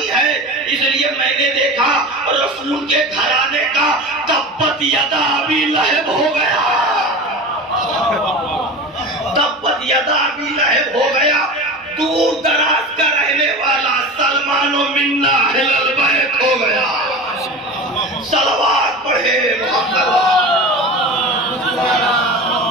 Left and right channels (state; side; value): normal; both; correlation 0.31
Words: ہے۔ اس لیے میں نے دیکھا رسول کے گھرانے کا تبت یدا ابی لہب ہو گیا، تبت یدا ابی لہب ہو گیا۔ دور دراز کا رہنے والا سلمان و منا اہل البیت ہو گیا۔ صلوات پڑھے محمد۔